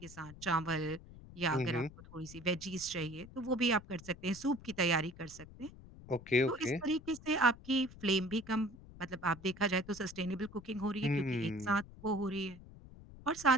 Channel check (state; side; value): noise; left; rumble, 18 dB below the sound